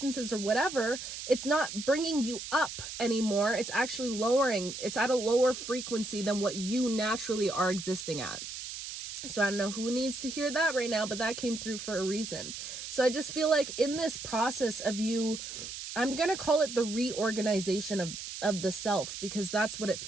or whatever, it's not bringing you up anymore. It's actually lowering. It's at a lower frequency than what you naturally are existing at. So I don't know who needs to hear that right now, but that came through for a reason. So I just feel like in this process of you, I'm going to call it the reorganization of the self, because that's what it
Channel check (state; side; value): noise; right; hiss, 8 dB below the sound